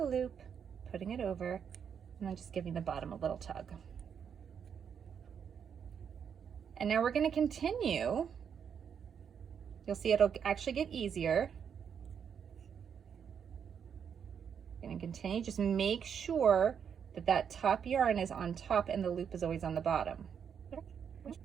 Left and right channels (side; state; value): left; quieter; 7.5 dB